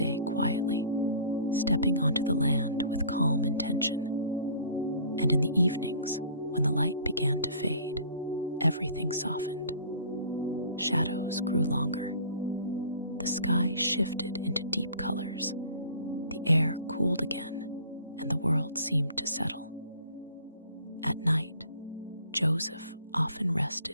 quietly, stepping onto the land with calm intention. And in the evenings, when the light began to fade, everything softened. Shadows grew longer. The sky shifted into deep colors. The air cooled again, and the world seemed to settle. At night, Joseph often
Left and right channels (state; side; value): inverted; both; correlation -0.49